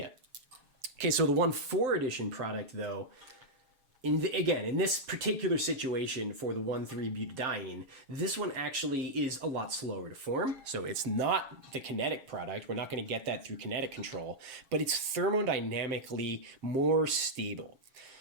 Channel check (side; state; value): left; late; 7.3 ms